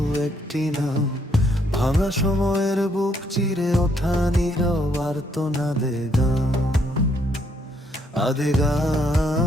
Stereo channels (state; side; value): normal; both; correlation 0.71